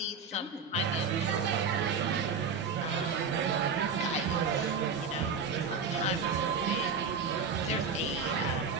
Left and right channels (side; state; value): left; quieter; 5.2 dB